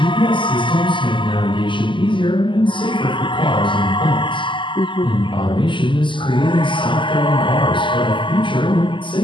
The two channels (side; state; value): right; late; 0.24 ms